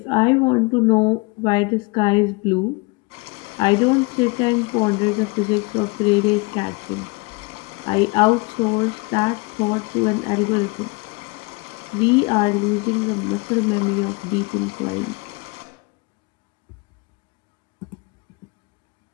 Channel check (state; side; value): quieter; right; 27.9 dB